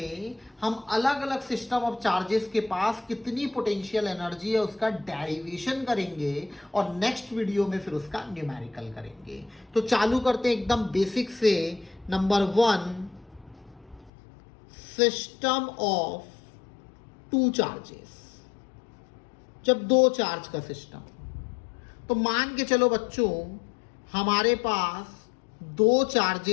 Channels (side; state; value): right; drops out; at 14.1 s